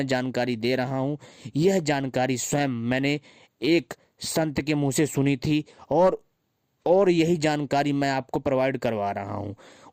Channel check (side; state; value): both; identical; correlation 1.00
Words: जानकारी दे रहा हूँ, यह जानकारी स्वयं मैंने एक संत के मुंह से सुनी थी, और यही जानकारी मैं आपको प्रोवाइड करवा रहा हूँ।